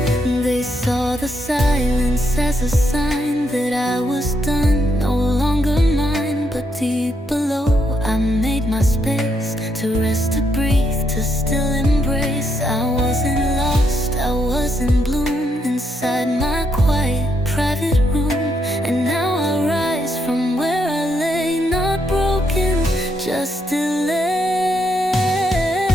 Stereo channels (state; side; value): normal; both; correlation 0.77